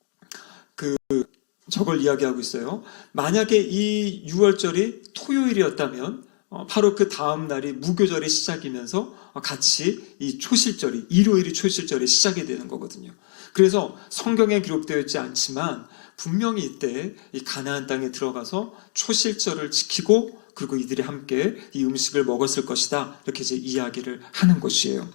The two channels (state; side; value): silent; right; 57 dB below the other